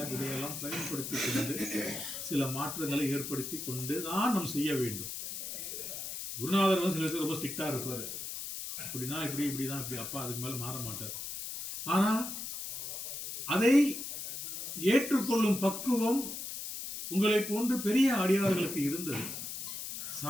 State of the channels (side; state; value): left; noise; hiss, 6 dB below the sound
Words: இதையெல்லாம் பயன்படுத்தி கொண்டு சில மாற்றங்களை ஏற்படுத்தி கொண்டு தான் நாம் செய்ய வேண்டும். குருநாதர் வந்து சில பேர் ரொம்ப ஸ்ட்ரிக்டா இருப்பாரு, இப்படின்னா இப்படிதான் இப்படி, அப்பா அதுக்கு மேல மாற மாட்டார். ஆனா அதை ஏற்றுக்கொள்ளும் பக்குவம் உங்களை போன்று பெரிய அடியார்களுக்கு இருந்தது.